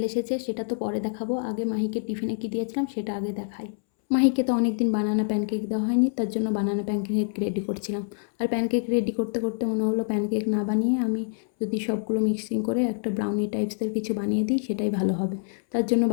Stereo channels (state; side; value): silent; right; 61 dB below the other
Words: এসেছে, সেটা তো পরে দেখাবো। আগে মাহিকে টিফিনে কী দিয়েছিলাম সেটা আগে দেখাই। মাহিকে তো অনেক দিন বানানা প্যানকেক দেওয়া হয়নি, তার জন্য বানানা প্যানকেক রেডি করছিলাম। আর প্যানকেক রেডি করতে করতে মনে হলো প্যানকেক না বানিয়ে আমি যদি সবগুলো মিক্সিং করে একটা ব্রাউনি টাইপসের কিছু বানিয়ে দিই সেটাই ভালো হবে। তার জন্য